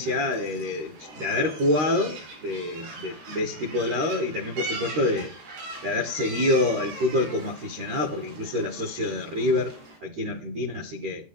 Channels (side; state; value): left; late; 13 ms